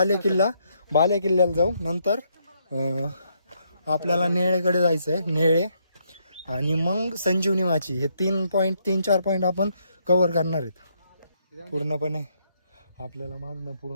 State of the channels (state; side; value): inverted; both; correlation -0.75